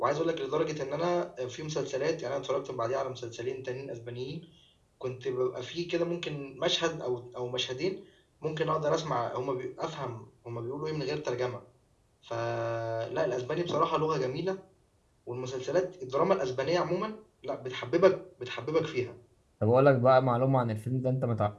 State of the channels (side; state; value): both; identical; correlation 1.00